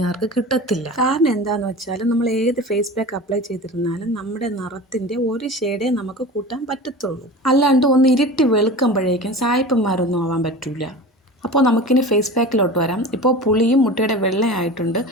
കിട്ടത്തില്ല. കാരണം എന്താണെന്ന് വെച്ചാൽ നമ്മൾ ഏത് ഫേസ് പാക്ക് അപ്ലൈ ചെയ്തിരുന്നാലും നമ്മുടെ നിറത്തിൻ്റെ ഒരു ഷെയ്ഡേ നമുക്ക് കൂട്ടാൻ പറ്റത്തുള്ളൂ. അല്ലാണ്ട് ഒന്ന് ഇരുട്ടി വെളുക്കുമ്പോഴേക്കും സായിപ്പന്മാരൊന്നും ആവാൻ പറ്റില്ല. അപ്പോൾ നമുക്കിനി ഫേസ് പാക്കിലോട്ട് വരാം. ഇപ്പോൾ പുളിയും മുട്ടയുടെ വെള്ളയായിട്ടുണ്ട്.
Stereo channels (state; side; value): normal; both; correlation 0.33